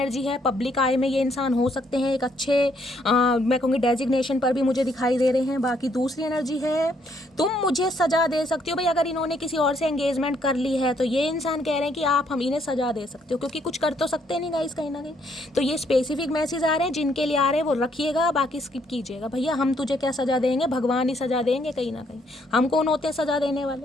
है। पब्लिक आई में ये इंसान हो सकते हैं, एक अच्छे मैं कहूँगी डेजिग्नेशन पर भी मुझे दिखाई दे रहे हैं। बाकी दूसरी एनर्जी है तुम मुझे सजा दे सकती हो। भाई अगर इन्होंने किसी और से एंगेजमेंट कर ली है तो ये इंसान कह रहे हैं कि आप हम इन्हें सजा दे सकते हो, क्योंकि कुछ कर तो सकते नहीं गाइस कहीं ना कहीं। तो ये स्पेसिफिक मैसेज आ रहे हैं, जिनके लिए आ रहे हैं वो रखिएगा, बाकी स्किप कीजिएगा। भैया हम तुझे क्या सजा देंगे, भगवान ही सजा देंगे कहीं ना कहीं, हम कौन होते हैं सजा देने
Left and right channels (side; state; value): both; normal; correlation 0.70